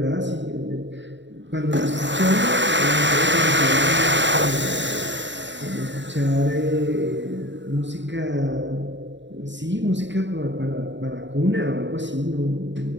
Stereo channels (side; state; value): left; late; 0.53 ms